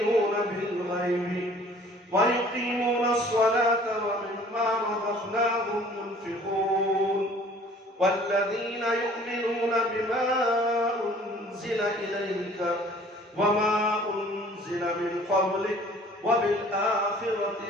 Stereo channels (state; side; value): normal; both; correlation 0.52